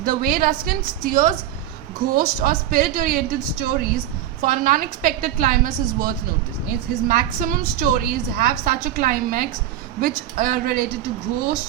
The way Ruskin steers ghost or spirit-oriented stories for an unexpected climax is worth noticing. His maximum stories have such a climax which are related to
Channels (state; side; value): quieter; left; 11.9 dB